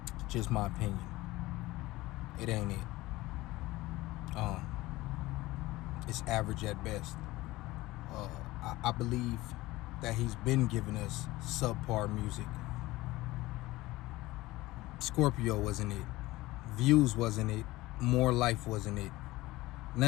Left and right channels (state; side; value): quieter; right; 18.8 dB